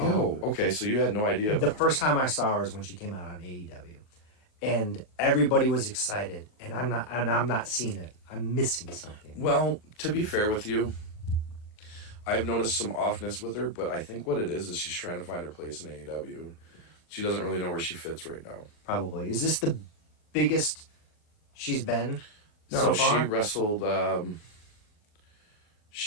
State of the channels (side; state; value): right; late; 39 ms